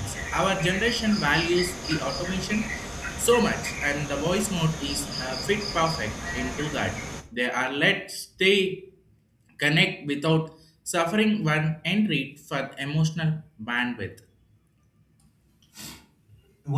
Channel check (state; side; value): identical; both; correlation 1.00